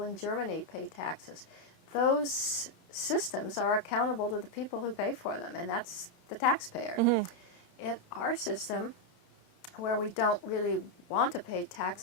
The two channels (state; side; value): late; right; 29 ms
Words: in Germany pay taxes, those systems are accountable to the people who pay for them, and that's the taxpayer. In our system, where we don't really want to pay